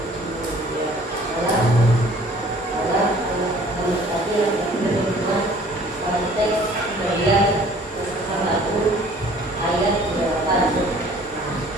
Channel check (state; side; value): normal; both; correlation 0.53